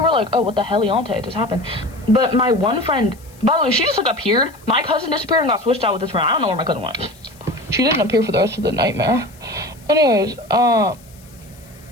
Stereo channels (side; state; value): left; noise; hiss, 26 dB below the sound